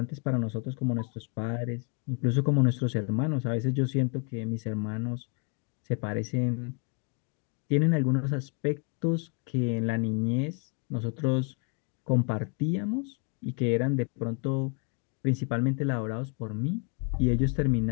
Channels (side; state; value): right; quieter; 35.8 dB